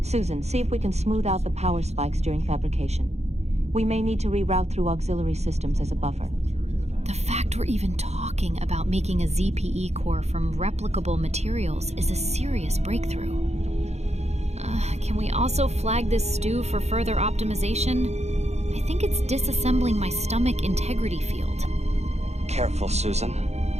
Susan, see if we can smooth out the power spikes during fabrication. We may need to reroute through auxiliary systems as a buffer. The fact we're even talking about making a ZPE core from replicable materials is a serious breakthrough. Can we also flag this stew for further optimization? I think it's disassembling my stomach integrity field. Careful, Susan.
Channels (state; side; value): late; left; 0.32 ms